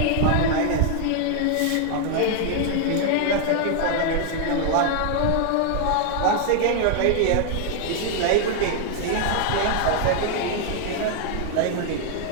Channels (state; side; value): different; both; correlation 0.00